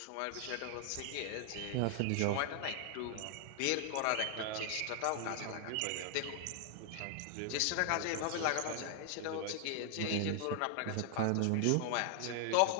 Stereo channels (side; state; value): both; different; correlation 0.00